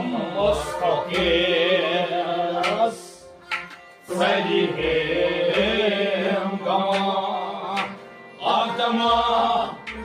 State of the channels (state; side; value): identical; both; correlation 1.00